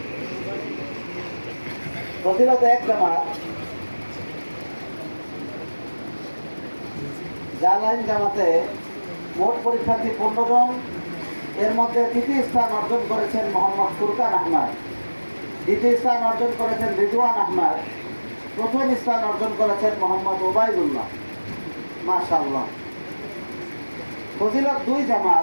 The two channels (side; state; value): both; inverted; correlation -1.00